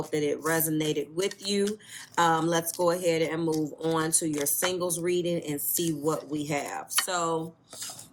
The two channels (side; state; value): both; identical; correlation 1.00